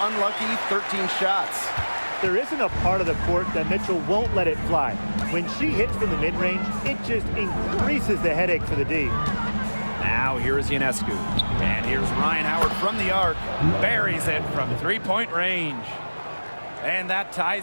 13 shots. There isn't a part of the court that Mitchell won't let it fly. When she hits from the mid-range, it just increases the headache for the D. Now here's Ionescu. And here's Ryan Howard from the arc. Buries it from three-point range. And that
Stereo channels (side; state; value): both; inverted; correlation -1.00